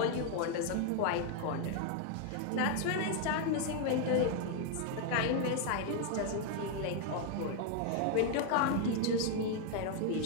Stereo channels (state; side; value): different; both; correlation 0.01